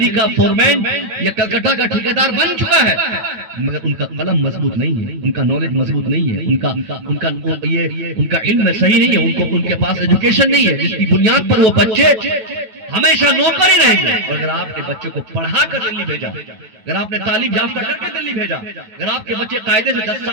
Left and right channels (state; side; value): late; left; 9.2 ms